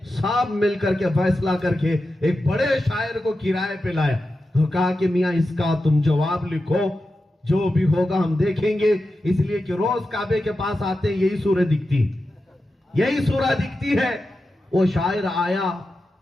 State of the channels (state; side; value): normal; both; correlation 0.91